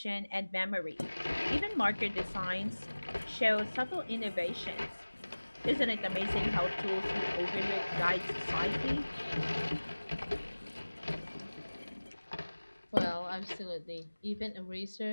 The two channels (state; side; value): inverted; both; correlation -1.00